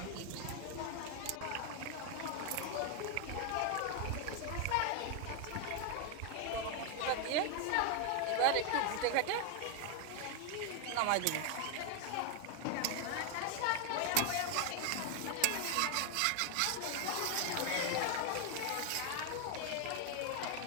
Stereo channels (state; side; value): different; both; correlation 0.00